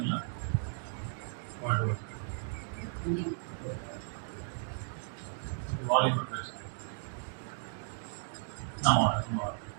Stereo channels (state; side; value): silent; left; digital silence